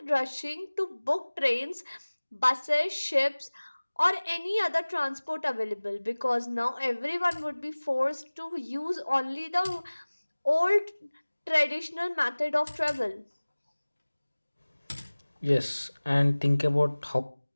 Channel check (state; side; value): inverted; both; correlation -1.00